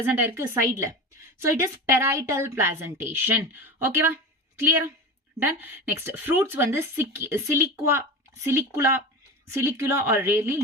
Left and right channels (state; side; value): normal; both; correlation 0.27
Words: ஆயிருக்கு, சைட்ல. So it is parietal placentation. ஓகேவா? கிளியரா? டன். நெக்ஸ்ட் ஃப்ரூட்ஸ் வந்து சிலிகுலா or rarely